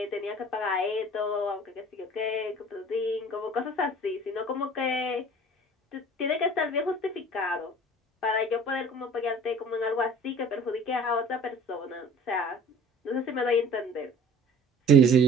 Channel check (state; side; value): normal; both; correlation 0.46